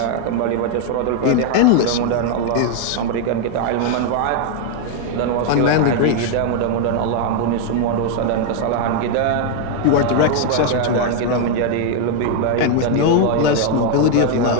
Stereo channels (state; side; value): different; both; correlation 0.00